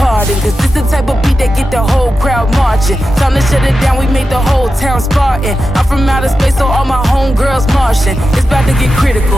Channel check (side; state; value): both; normal; correlation 0.91